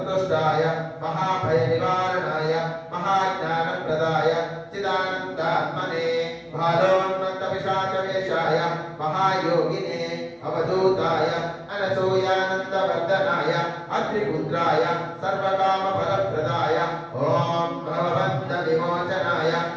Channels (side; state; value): both; identical; correlation 1.00